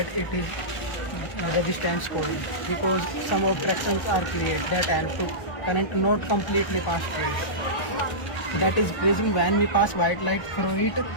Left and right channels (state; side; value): late; right; 1.0 ms